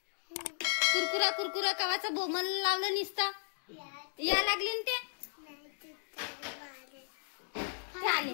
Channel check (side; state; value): right; silent; digital silence